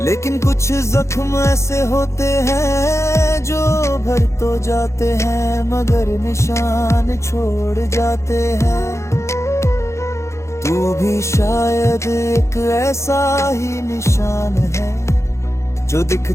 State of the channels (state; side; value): late; right; 0.14 ms